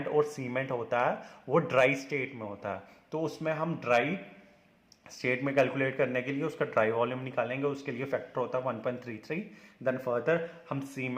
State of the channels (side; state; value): both; identical; correlation 1.00